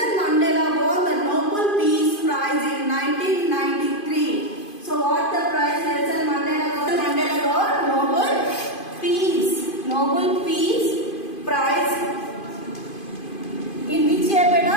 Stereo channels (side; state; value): right; late; 2.5 ms